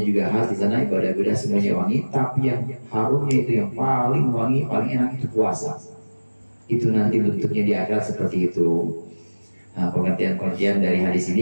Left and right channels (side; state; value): both; inverted; correlation -1.00